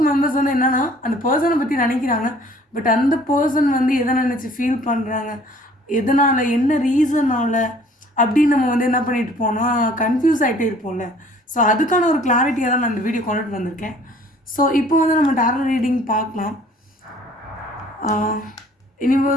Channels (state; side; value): normal; both; correlation 0.54